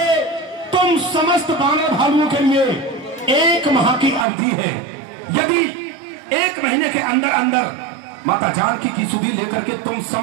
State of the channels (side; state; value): left; drops out; at 4.2 s